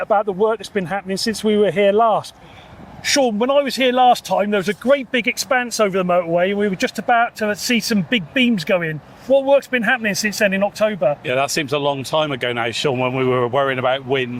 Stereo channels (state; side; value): identical; both; correlation 1.00